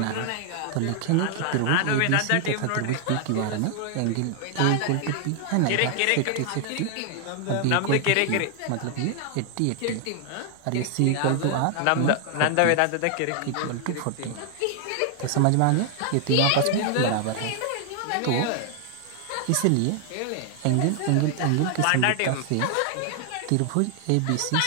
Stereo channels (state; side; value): different; both; correlation 0.00